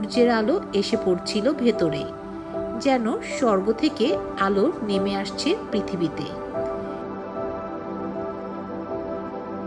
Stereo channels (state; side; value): identical; both; correlation 1.00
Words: আলো এসে পড়ছিল ভেতরে, যেন স্বর্গ থেকে আলো নেমে আসছে পৃথিবীতে।